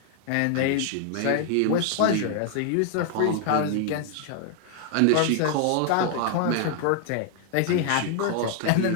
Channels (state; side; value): different; both; correlation 0.00